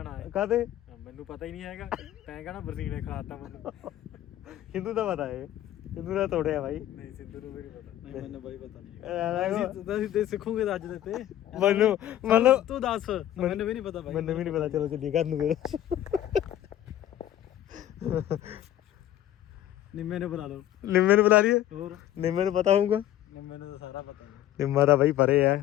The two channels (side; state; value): right; quieter; 12.6 dB